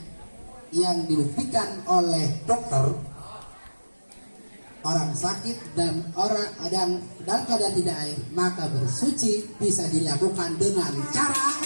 yang dibuktikan oleh dokter, orang sakit dan orang dalam keadaan tidak air, maka bersuci bisa dilakukan dengan cara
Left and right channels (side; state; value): both; inverted; correlation -1.00